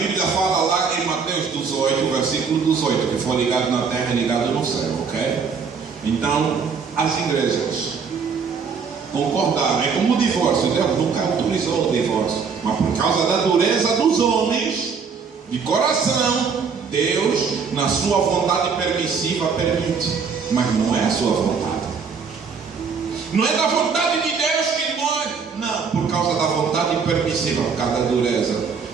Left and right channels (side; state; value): left; quieter; 5.7 dB